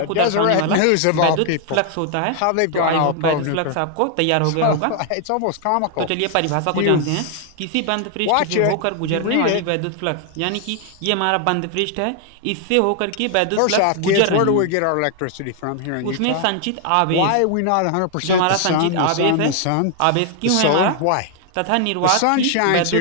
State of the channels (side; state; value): both; different; correlation 0.00